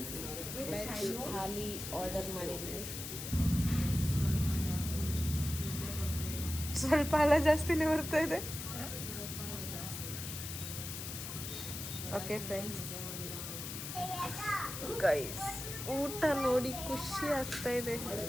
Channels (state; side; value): noise; left; hiss, 7 dB below the sound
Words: ವೆಜ್ ಥಾಲಿ ಆರ್ಡರ್ ಮಾಡಿದ್ದೀವಿ. ಸ್ವಲ್ಪ ಅಲ್ಲ ಜಾಸ್ತಿನೇ ಬರ್ತಾ ಇದೆ. ಓಕೆ ಫ್ರೆಂಡ್ಸ್, ಗೈಸ್ ಊಟ ನೋಡಿ ಖುಷಿ ಆಗ್ತಾ ಇದೆ.